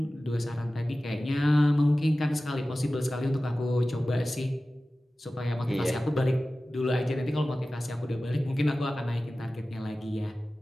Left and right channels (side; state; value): both; normal; correlation 0.96